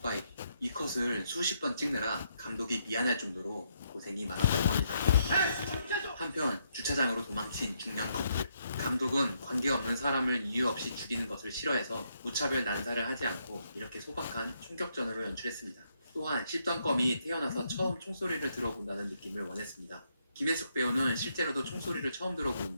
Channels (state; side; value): inverted; both; correlation -0.76